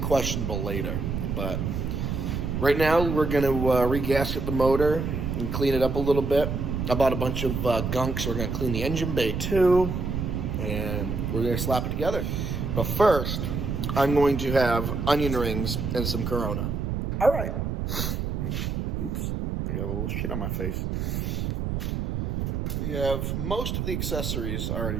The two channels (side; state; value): right; noise; rumble, 2 dB below the sound